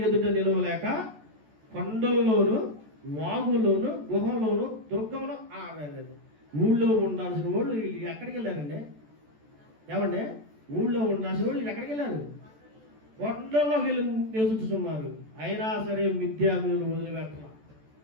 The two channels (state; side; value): late; left; 14 ms